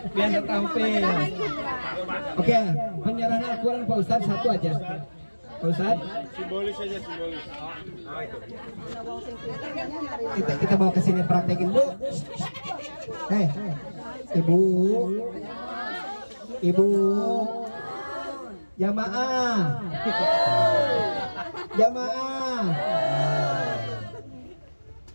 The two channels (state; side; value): inverted; both; correlation -1.00